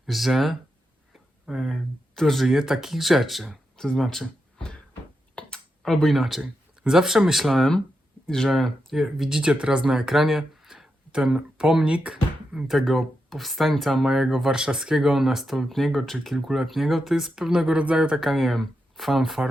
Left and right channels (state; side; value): normal; both; correlation 0.86